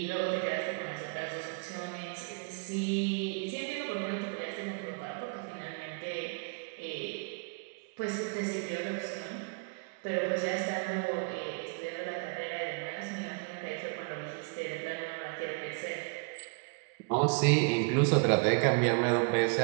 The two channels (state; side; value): quieter; left; 35.9 dB